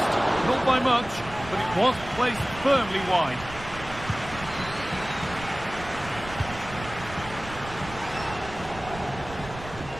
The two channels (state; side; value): noise; right; rumble, 14 dB below the sound